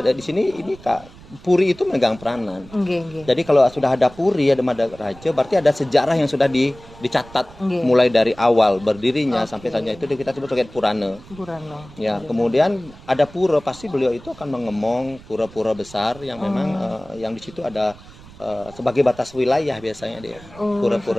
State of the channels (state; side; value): noise; right; rumble, 20 dB below the sound